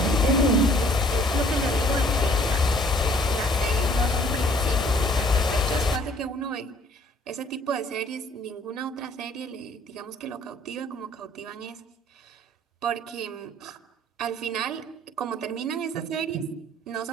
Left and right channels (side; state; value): both; normal; correlation 0.58